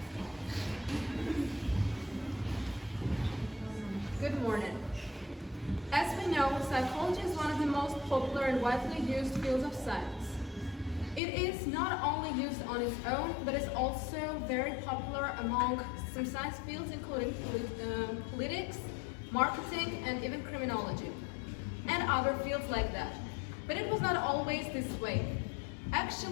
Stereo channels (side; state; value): right; drops out; at 11.2 s